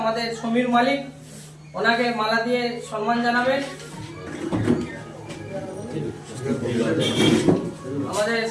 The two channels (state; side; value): identical; both; correlation 1.00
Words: আমাদের সমীর মালিক ওনাকে মালা দিয়ে সম্মান জানাবেন আমাদের